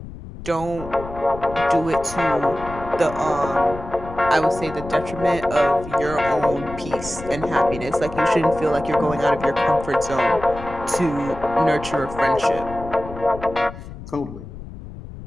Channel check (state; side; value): noise; left; rumble, 13 dB below the sound